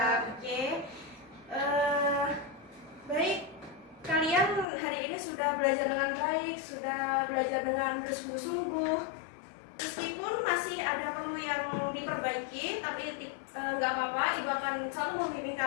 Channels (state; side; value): drops out; right; at 4.7 s